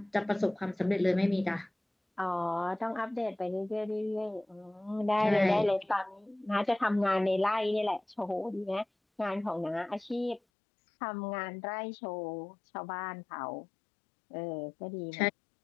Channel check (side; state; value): right; drops out; at 10.4 s